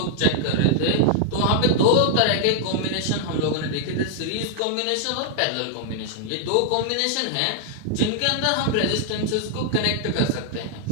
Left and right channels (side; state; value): both; different; correlation 0.00